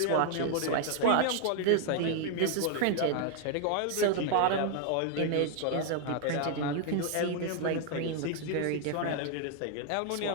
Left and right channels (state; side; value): different; both; correlation 0.00